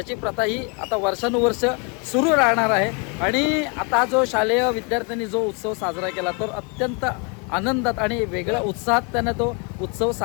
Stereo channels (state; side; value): quieter; right; 33.9 dB